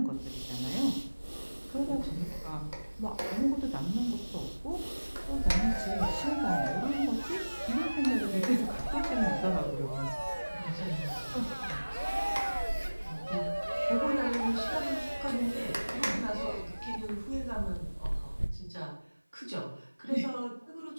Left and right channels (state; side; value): inverted; both; correlation -1.00